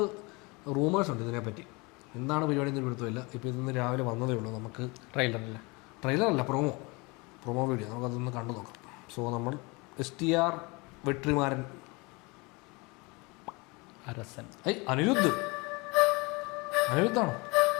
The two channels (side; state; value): right; quieter; 26.8 dB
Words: റൂമേഴ്സ് ഉണ്ട് ഇതിനെപ്പറ്റി. എന്താണ് പരിപാടി എന്ന് പിടുത്തമില്ല. ഇപ്പോൾ ഇന്ന് രാവിലെ വന്നതേ ഉള്ളൂ. നമുക്ക് ട്രെയിലറല്ല പ്രൊമോ വീഡിയോ നമുക്കതൊന്ന് കണ്ടു നോക്കാം. സോ നമ്മൾ STR വെട്രിമാരൻ അരസൻ അനിരുദ്ധാണോ?